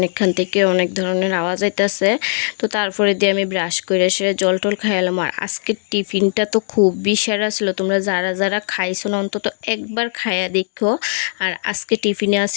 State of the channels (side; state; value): right; silent; digital silence